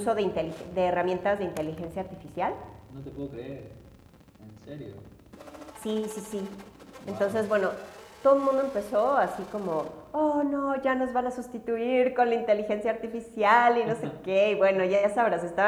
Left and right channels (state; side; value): identical; both; correlation 1.00